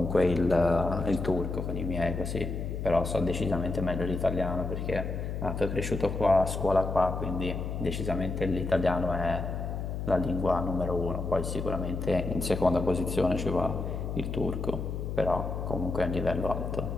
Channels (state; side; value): noise; left; hum, 4 dB below the sound